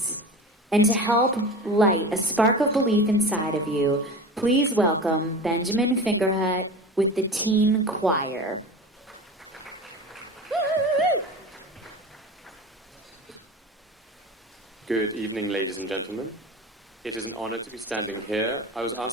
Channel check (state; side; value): normal; both; correlation 0.32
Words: And to help light a spark of belief inside of you, please welcome Benjamin Fingerhut with the Teen Choir. Good evening, ladies and gentlemen. It is an honor to be standing here. I was